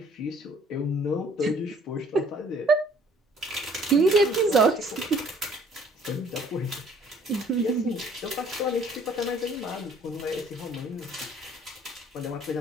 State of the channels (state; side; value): normal; both; correlation 0.58